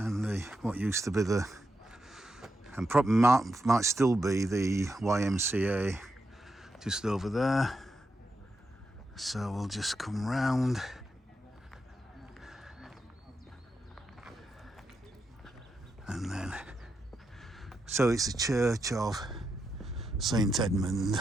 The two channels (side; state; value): both; normal; correlation 0.85